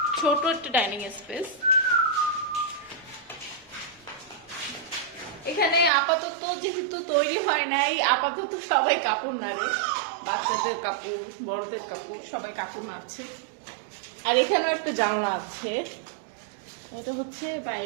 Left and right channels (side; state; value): left; drops out; at 5.9 s